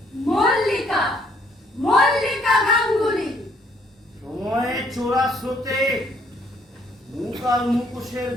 মল্লিকা, মল্লিকা গাঙ্গুলি। সময়ে চোরা স্রোতে মুখ আর মুখোশের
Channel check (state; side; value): normal; both; correlation 0.66